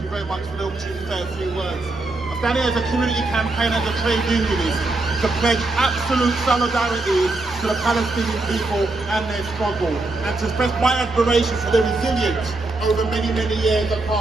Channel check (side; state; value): left; quieter; 3.1 dB